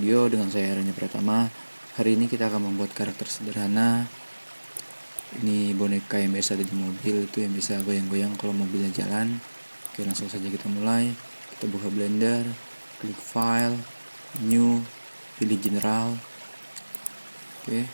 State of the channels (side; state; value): both; inverted; correlation -1.00